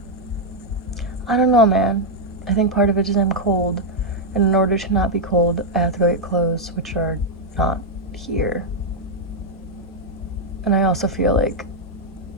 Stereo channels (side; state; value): both; normal; correlation -0.01